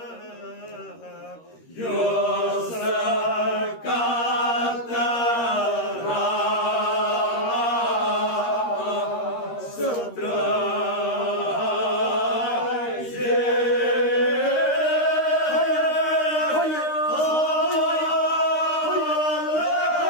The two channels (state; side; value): late; right; 13 ms